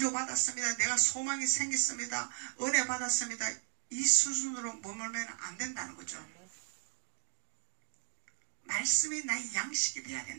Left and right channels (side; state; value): left; silent; 54 dB below the other